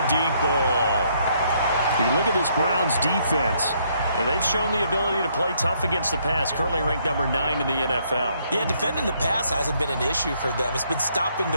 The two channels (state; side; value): inverted; both; correlation -0.70